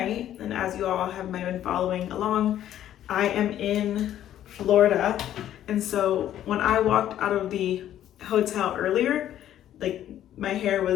and as you all have might have been following along, I am in Florida. And so when I walked out of the hotel earlier, like my hair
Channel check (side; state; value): right; quieter; 11.6 dB